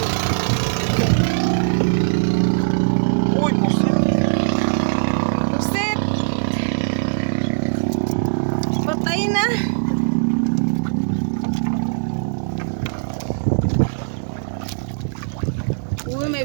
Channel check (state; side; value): silent; left; digital silence